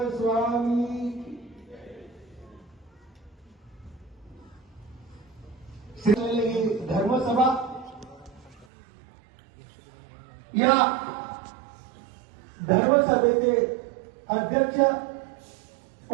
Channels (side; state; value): left; drops out; at 8.7 s